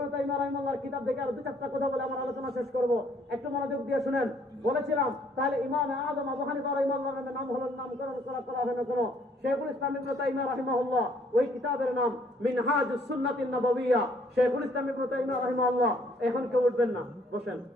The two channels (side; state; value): both; normal; correlation 0.64